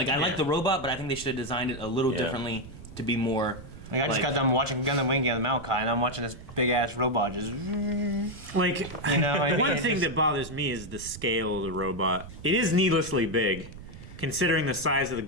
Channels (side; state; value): right; noise; rumble, 15 dB below the sound